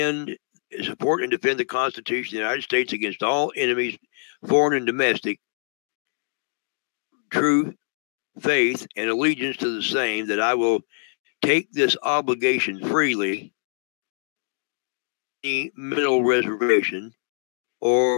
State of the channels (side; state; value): right; silent; digital silence